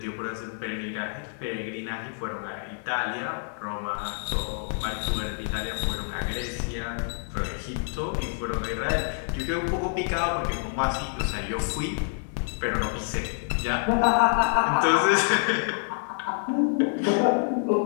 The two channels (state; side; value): silent; right; 60 dB below the other